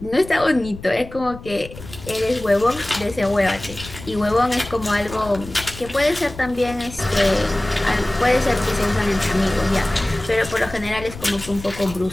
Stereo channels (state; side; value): noise; left; rumble, 14 dB below the sound